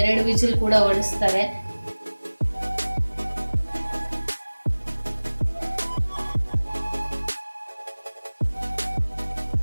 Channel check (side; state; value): both; inverted; correlation -1.00